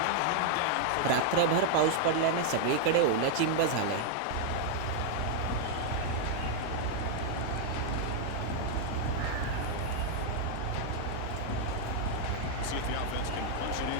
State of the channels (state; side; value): different; both; correlation 0.00